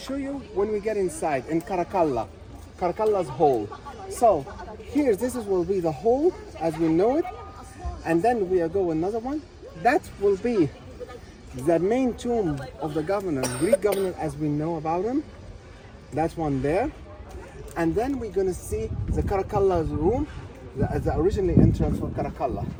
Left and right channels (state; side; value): identical; both; correlation 1.00